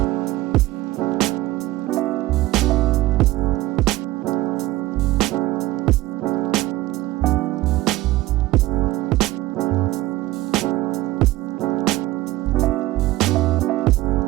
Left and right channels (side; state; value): left; quieter; 17.2 dB